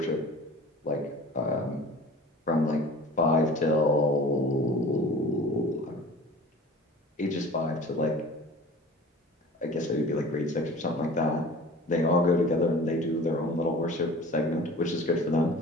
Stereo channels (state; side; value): normal; both; correlation 0.42